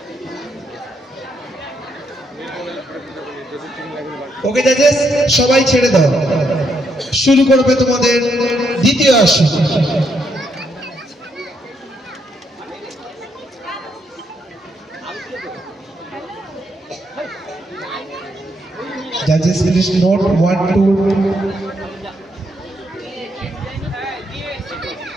ওকে জাজেস, সবাই ছেড়ে দাও। শুরু করবে তোমাদের দ্বিতীয় আসর। Judges, please note 1 2।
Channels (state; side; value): normal; both; correlation 0.77